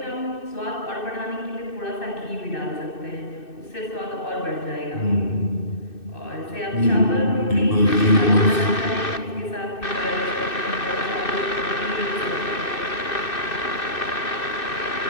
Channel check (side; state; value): right; late; 2.6 ms